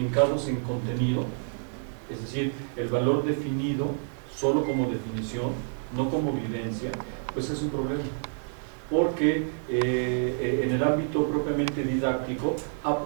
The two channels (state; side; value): silent; left; 59 dB below the other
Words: en contenido, es decir, el valor definido solo como definición, no como vivencia, pues es un problema. Porque en el ámbito propiamente didáctico ha